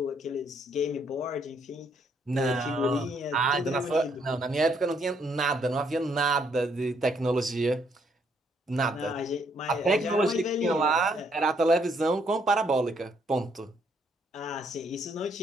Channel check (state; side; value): normal; both; correlation 0.70